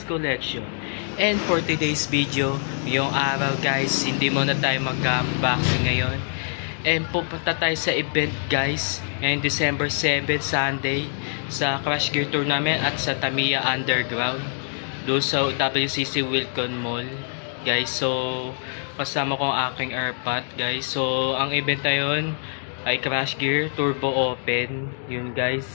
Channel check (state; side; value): silent; right; digital silence